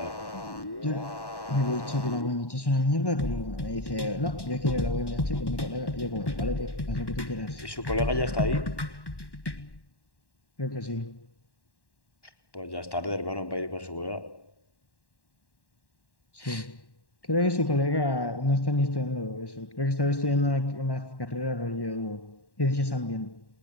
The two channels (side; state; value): right; late; 1.1 ms